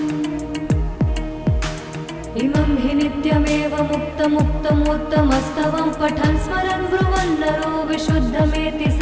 इमं हि नित्यमेव मुक्तमुत्तमोत्तमस्तवं पठन् स्मरन् ब्रुवन् नरो विशुद्धमेति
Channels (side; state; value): both; identical; correlation 1.00